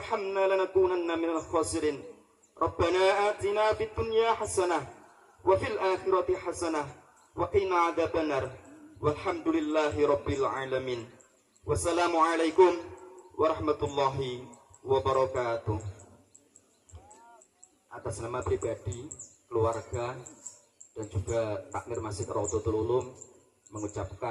lanakunanna minal khasirin. Rabbana atina fid dunya hasanah wa fil akhirati hasanah wa qina adzabannar. Walhamdulillahi rabbil alamin. Wassalamualaikum warahmatullahi wabarakatuh. Atas nama pribadi, keluarga, dan juga takmir Masjid Raudhatul Ulum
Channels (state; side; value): identical; both; correlation 1.00